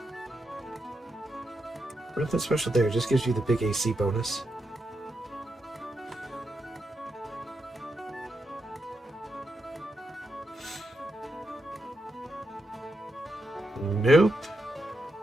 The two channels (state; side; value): normal; both; correlation 0.84